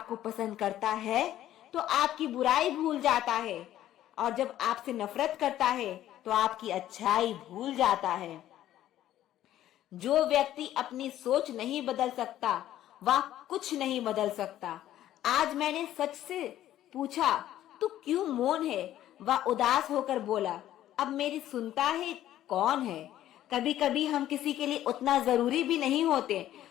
पसंद करता है तो आपकी बुराई भूल जाता है, और जब आपसे नफरत करता है तो आपकी अच्छाई भूल जाता है। जो व्यक्ति अपनी सोच नहीं बदल सकता वह कुछ नहीं बदल सकता। आज मैंने सच से पूछा, तू क्यों मौन है? वह उदास होकर बोला, अब मेरी सुनता है कौन है? कभी कभी हम किसी के लिए उतना जरूरी भी नहीं होते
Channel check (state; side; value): quieter; right; 12.8 dB